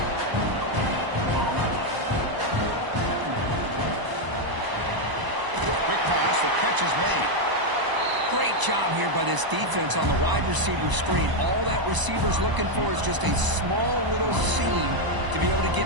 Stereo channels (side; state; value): left; late; 1.0 ms